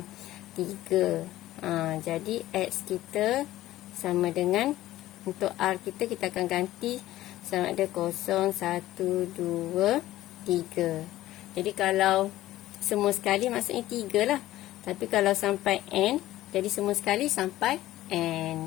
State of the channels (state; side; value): quieter; right; 15.1 dB